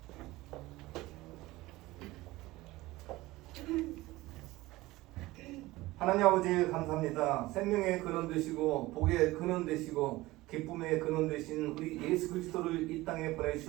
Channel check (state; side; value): quieter; left; 19.0 dB